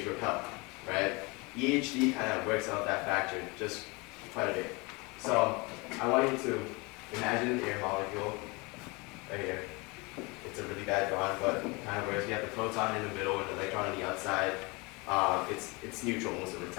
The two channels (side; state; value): right; quieter; 26.9 dB